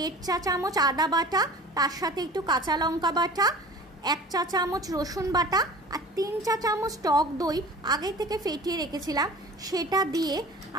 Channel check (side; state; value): both; normal; correlation 0.41